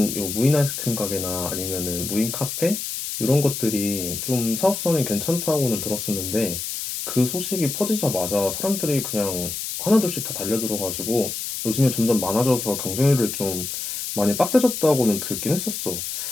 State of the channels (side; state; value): left; noise; hiss, 5 dB below the sound